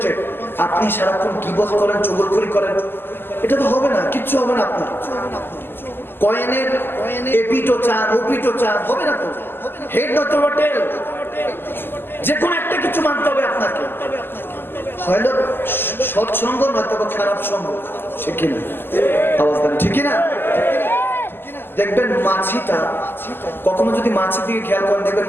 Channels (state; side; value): late; right; 0.10 ms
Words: আপনি সারাক্ষণ গীবত করেন, চুগলখড়ি করেন, এটা তো হবে না, কিচ্ছু হবে না। আপনার কয়েনের এপিটো চান ওপিটো চান, হবে না তো। হেড নয়তো টেল, যে কোনো একটা কিছু মানতে হবে আপনাকে। হয়তো সৎসঙ্গ নয়তো খারাপ সঙ্গ, ঠিক কিনা? আওয়াজ দেন, ঠিক কিনা? দেখবেন মাছিটা কখনো যদি মাছির দিকে খেয়াল করেন, দেখবেন